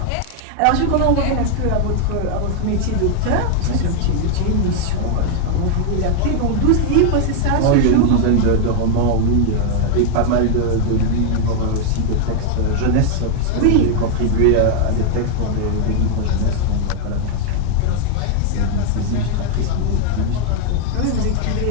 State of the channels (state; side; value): different; both; correlation 0.00